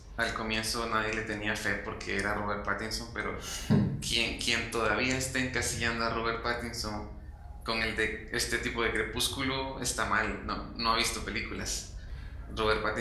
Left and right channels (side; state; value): both; identical; correlation 1.00